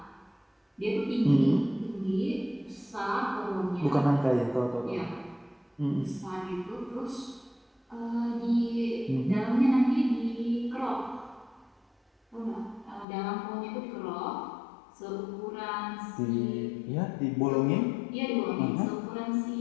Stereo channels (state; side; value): drops out; right; at 13.1 s